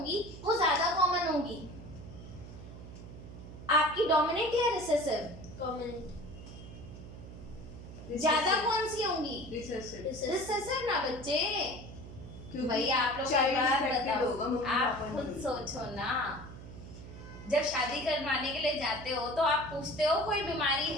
वो ज्यादा कॉमन होगी? आपकी डोमिनेंट या रिसेसिव? कॉमन ज्यादा कौन सी होंगी? रिसेसिव। रिसेसिव ना बच्चे, क्योंकि भाई आप लोग child एक बात affected होगा, बताओ, मम्मी आप पापा खुद नहीं। सोचो ना, जब शादी करवाने के लिए जाते हो तो आप पूछते हो कोई बीमारी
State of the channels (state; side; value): noise; right; hum, 13 dB below the sound